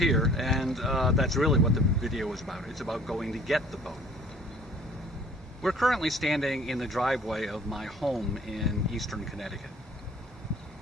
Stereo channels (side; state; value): both; normal; correlation 0.53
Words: and that's really what the video is about. It's about going to get the boat. We're currently standing in the driveway of my home in eastern Connecticut.